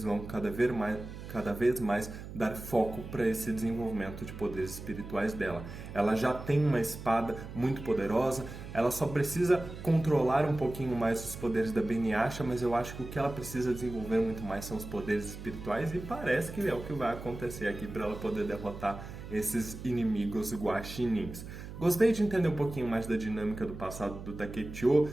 vão cada vez mais dar foco para esse desenvolvimento de poderes espirituais dela. Ela já tem uma espada muito poderosa, ela só precisa controlar um pouquinho mais os poderes da Beniyasha, mas eu acho que o que ela precisa desenvolver muito mais são os poderes espirituais, e parece que é o que vai acontecer aqui para ela poder derrotar esses inimigos guaxinins. Gostei de entender um pouquinho mais da dinâmica do passado do Takechio.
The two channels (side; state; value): right; noise; hum, 11 dB below the sound